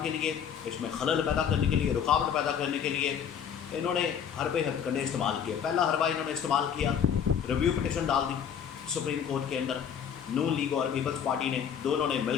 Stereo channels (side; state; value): right; quieter; 8.0 dB